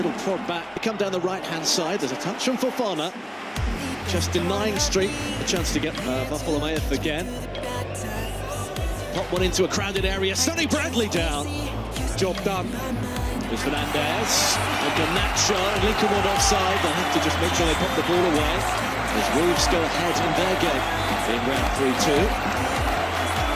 prod back. They come down the right-hand side. There's a touch from Fofana. Just denying Street a chance to get Bartholomew again. Pop one into a crowded area. Sonny Bradley down. Job done. There's Fernandez. And Garnacho and Lincoln one offside. They'll have to just make sure they pop the ball away. As Wolves go ahead in their game in round 3-2.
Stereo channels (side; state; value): both; identical; correlation 1.00